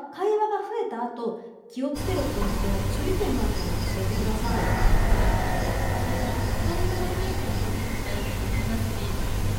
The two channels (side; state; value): both; identical; correlation 1.00